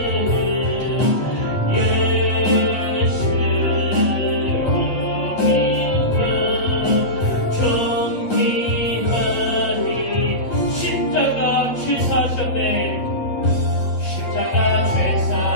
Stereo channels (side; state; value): right; late; 8.4 ms